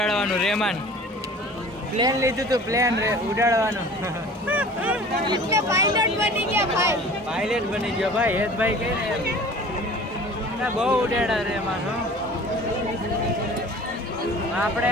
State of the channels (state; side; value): normal; both; correlation 0.44